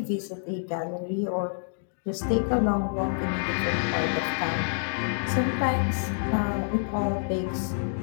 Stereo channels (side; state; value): right; silent; digital silence